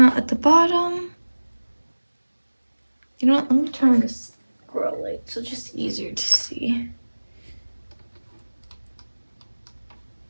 at the bottom. You know what, let me turn on this grow light so it's just easier to see.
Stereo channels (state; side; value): inverted; both; correlation -1.00